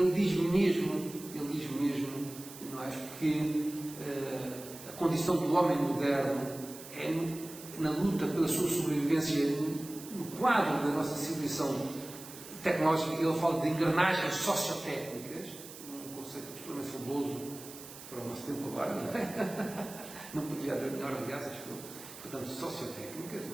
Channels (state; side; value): noise; right; hiss, 15 dB below the sound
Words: diz mesmo, não é, que a condição do homem moderno é na luta pela sua sobrevivência no quadro da nossa civilização tecnológica. Ele fala de engrenagens sociotécnicas, um conceito absolutamente fabuloso para o nosso tempo agora, não é? Não poderia haver melhor, aliás, acho que eu. Portanto, sociotécnicas,